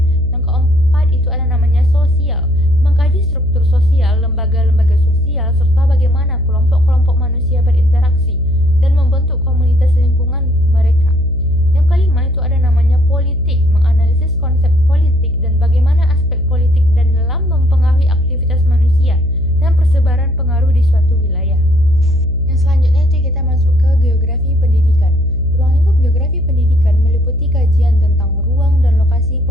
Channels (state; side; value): noise; left; hum, 9 dB below the sound